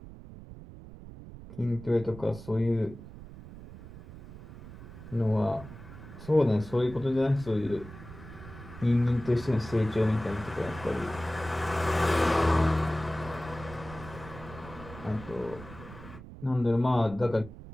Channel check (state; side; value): noise; right; rumble, 15 dB below the sound